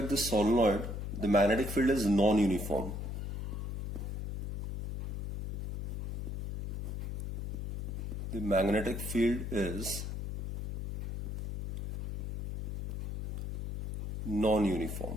the magnetic field is non-uniform. The magnetic field is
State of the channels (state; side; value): noise; left; hum, 5 dB below the sound